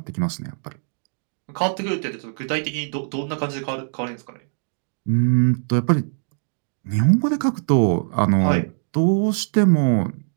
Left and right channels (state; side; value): silent; left; digital silence